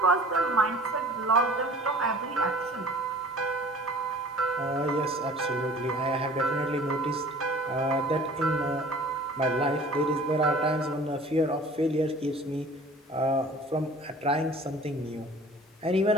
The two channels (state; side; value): normal; both; correlation 0.47